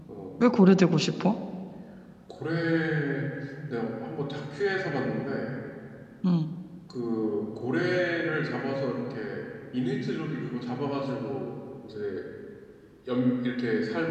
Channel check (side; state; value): both; identical; correlation 1.00